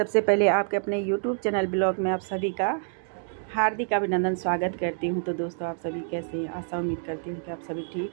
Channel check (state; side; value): silent; left; digital silence